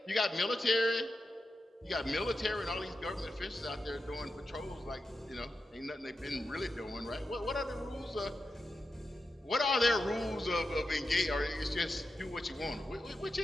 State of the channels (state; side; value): normal; both; correlation 0.89